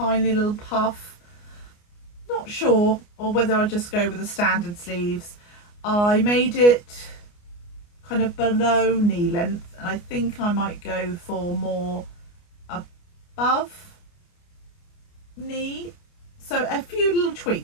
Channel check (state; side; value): late; right; 29 ms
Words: little puff. Not sure, or whether I'll just go with the standard sleeves. I made it kind of below knee length, and I think I might go for more above knee. So a few little